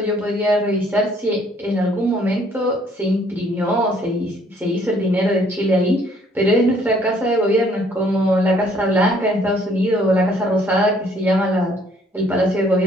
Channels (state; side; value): normal; both; correlation 0.63